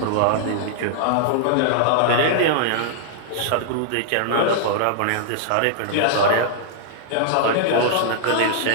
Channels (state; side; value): different; both; correlation -0.01